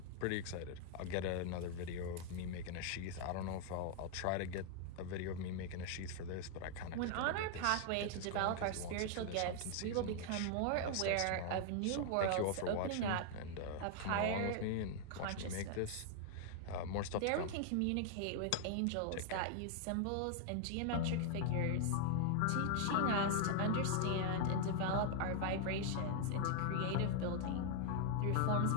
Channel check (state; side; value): different; both; correlation 0.00